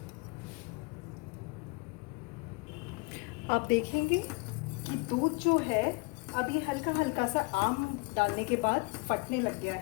आप देखेंगे कि दूध जो है अभी हल्का हल्का सा आम डालने के बाद फटने लग गया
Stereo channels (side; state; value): right; quieter; 30.8 dB